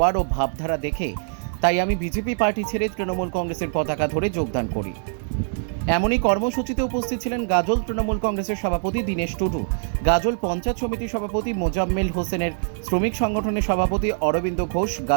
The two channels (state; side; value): silent; left; digital silence